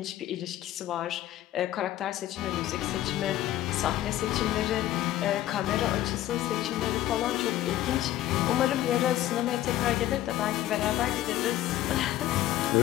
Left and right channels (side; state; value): right; quieter; 13.9 dB